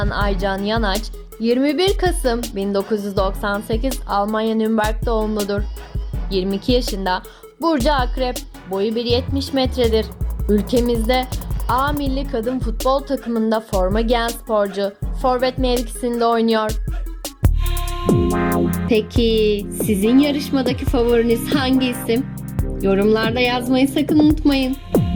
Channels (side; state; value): both; identical; correlation 1.00